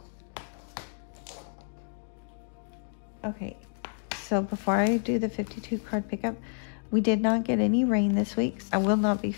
okay, so before I do the 52 card pickup, we did not get any rain this week. I will not be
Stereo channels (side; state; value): right; silent; digital silence